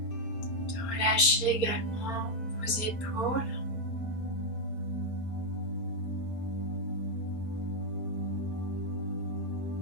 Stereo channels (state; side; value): late; right; 4.3 ms